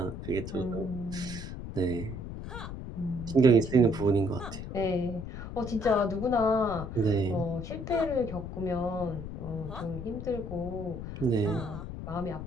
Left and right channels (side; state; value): left; noise; rumble, 8 dB below the sound